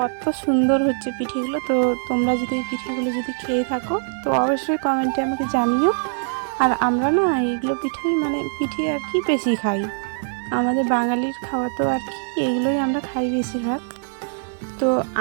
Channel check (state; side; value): silent; left; 64 dB below the other